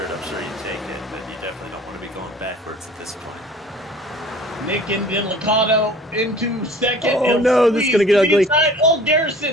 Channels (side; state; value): both; normal; correlation 0.47